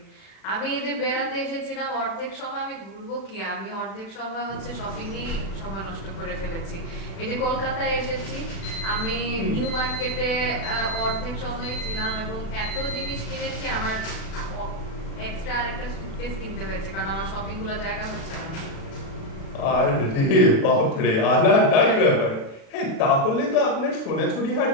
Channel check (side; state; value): right; late; 36 ms